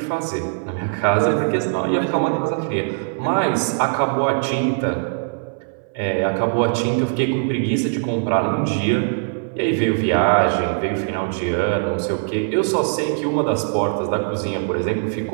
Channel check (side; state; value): left; silent; 63 dB below the other